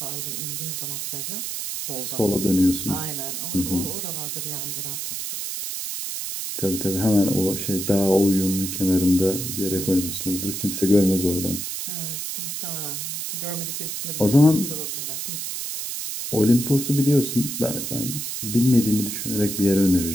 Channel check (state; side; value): noise; right; hiss, 5 dB below the sound